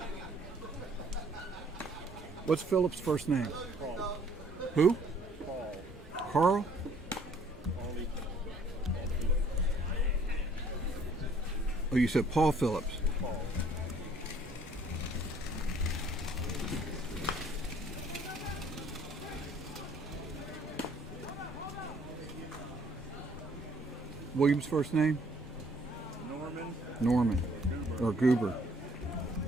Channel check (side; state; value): both; normal; correlation 0.60